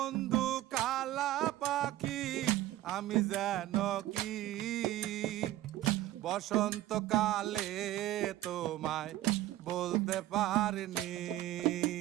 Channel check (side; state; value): left; quieter; 14.9 dB